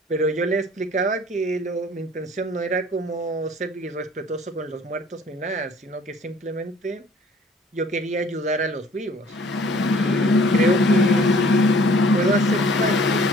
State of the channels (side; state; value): both; normal; correlation 0.54